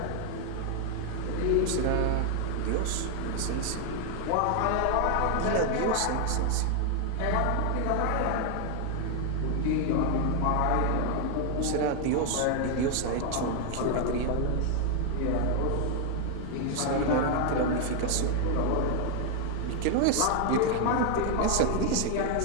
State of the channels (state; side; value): different; both; correlation 0.00